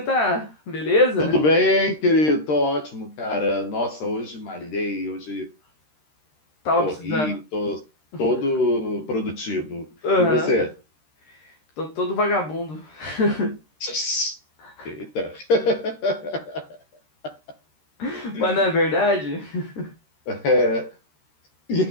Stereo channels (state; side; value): late; right; 13 ms